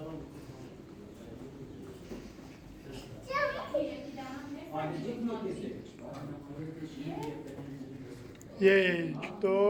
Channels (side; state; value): both; identical; correlation 1.00